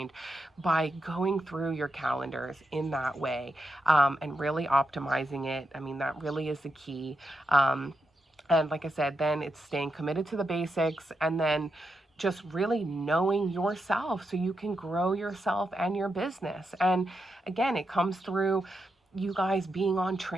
by going through your calendars in that way, and really optimizing it. I mean, that really is the key. And like I said, then it's staying committed to the basics, and then just really knowing yourself so you can grow yourself and your business. And again, it comes through you guys being on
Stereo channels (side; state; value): both; normal; correlation 0.85